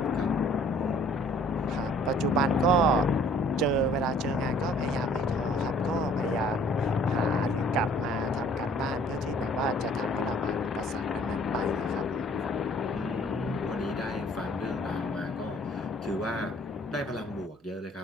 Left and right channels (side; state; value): both; normal; correlation 0.56